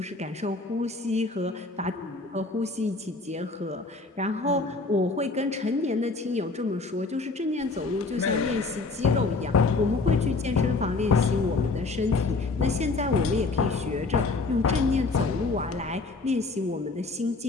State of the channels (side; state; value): right; quieter; 3.7 dB